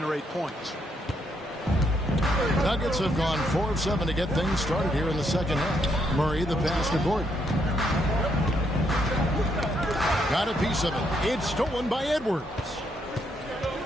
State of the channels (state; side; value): normal; both; correlation 0.75